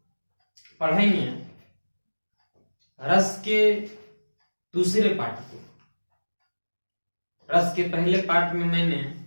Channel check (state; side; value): inverted; both; correlation -1.00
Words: पढ़ेंगे रस के दूसरे पाठ को। रस के पहले पाठ में मैंने